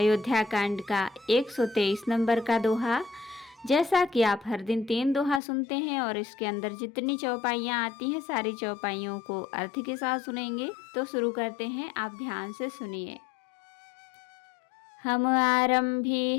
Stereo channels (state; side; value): drops out; right; at 5.4 s